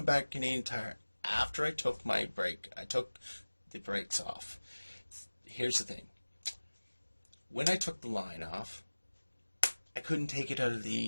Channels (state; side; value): inverted; both; correlation -1.00